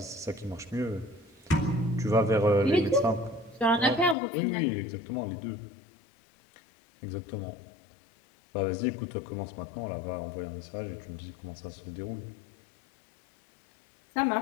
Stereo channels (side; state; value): right; drops out; at 4.2 s